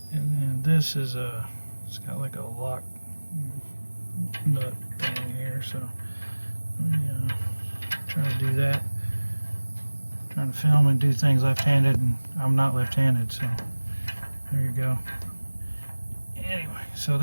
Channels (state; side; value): inverted; both; correlation -1.00